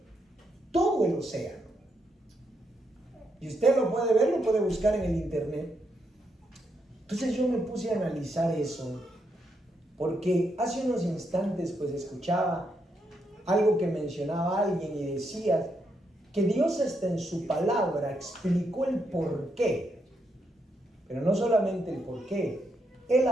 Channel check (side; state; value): both; normal; correlation 0.79